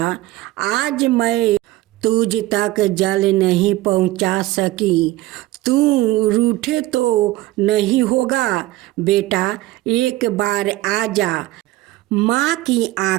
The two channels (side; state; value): left; quieter; 17.2 dB